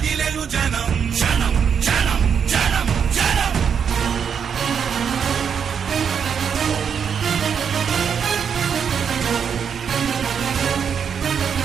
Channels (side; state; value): left; quieter; 7.2 dB